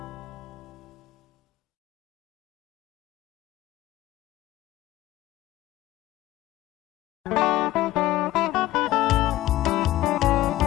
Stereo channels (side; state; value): right; quieter; 15.7 dB